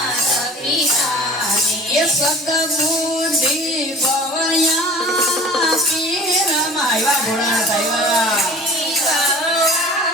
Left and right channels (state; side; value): normal; both; correlation 0.44